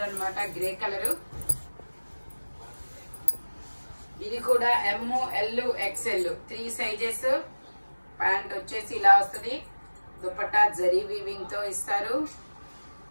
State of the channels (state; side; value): inverted; both; correlation -1.00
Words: అన్నమాట, గ్రే కలర్. ఇది కూడా ML XL 3 సైజెస్. ప్యాంట్ వచ్చేసి ఇలా వస్తుంది. దుపట్టా జరీ వీవింగ్ తో ఇస్తారు.